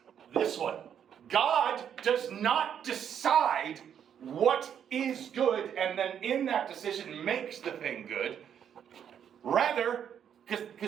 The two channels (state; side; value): quieter; left; 8.8 dB